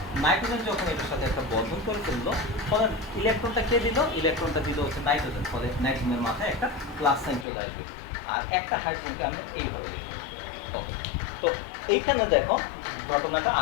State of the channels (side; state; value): right; drops out; at 7.5 s